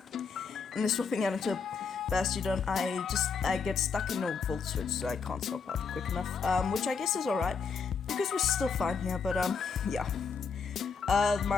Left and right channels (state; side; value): quieter; right; 5.5 dB